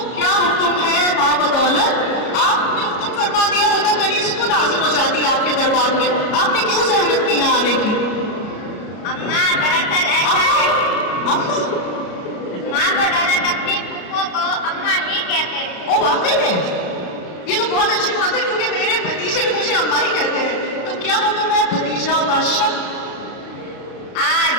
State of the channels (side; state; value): right; late; 33 ms